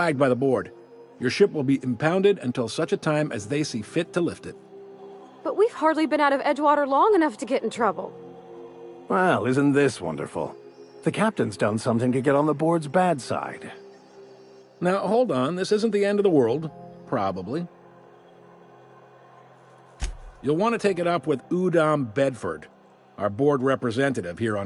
by the board. Your ship will be impounded until such a time as they see fit to lift it. But we've hardly been out of Edgewater long enough to get in trouble. Well, isn't this wonderful? The captain's done something to get on the board's bad side. Now, hold on. This isn't the end of the world. Probably. You'll want to take it up with Udom Bedford, our board representative here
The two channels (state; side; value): identical; both; correlation 1.00